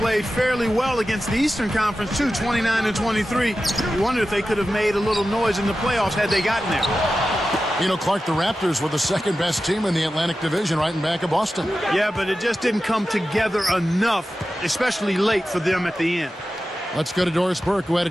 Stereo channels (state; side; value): normal; both; correlation 0.93